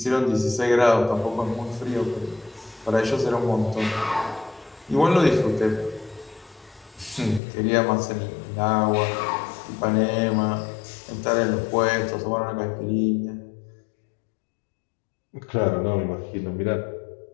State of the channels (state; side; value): drops out; right; at 7.4 s